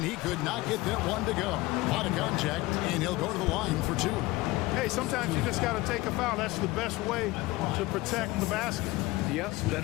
he could not get that one to go. A lot of contact, and he'll go to the line for 2. Hey, sometimes you just got to take a foul. That's the best way to protect the basket. Yes,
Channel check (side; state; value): right; quieter; 19.8 dB